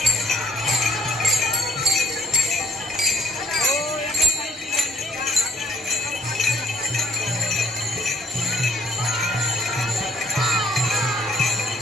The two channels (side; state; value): both; normal; correlation 0.62